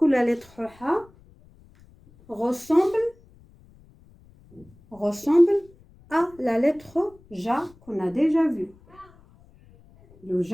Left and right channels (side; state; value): left; noise; rumble, 27 dB below the sound